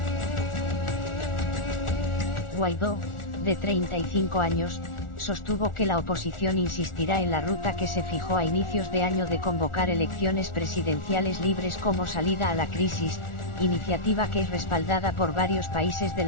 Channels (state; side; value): late; right; 1.4 ms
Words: Guaidó, de 35 años, sostuvo que la oposición insistirá en la ruta que se fijó a inicios de año de convocar elecciones presidenciales libres como salida a la crisis, iniciativa que es respaldada por varios países de